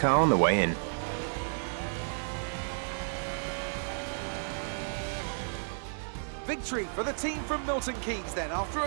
on the way in. Victory for the team from Milton Keynes then, after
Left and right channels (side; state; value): left; silent; digital silence